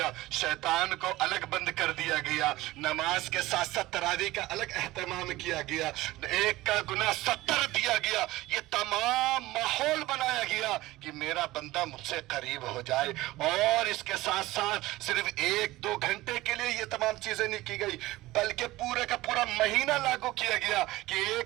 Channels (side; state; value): left; quieter; 18.1 dB